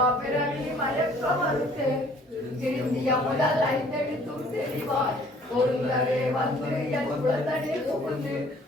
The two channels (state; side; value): normal; both; correlation 0.56